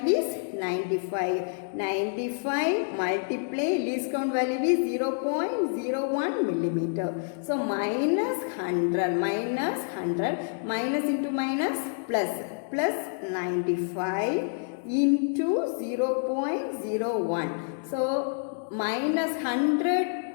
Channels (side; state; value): right; silent; digital silence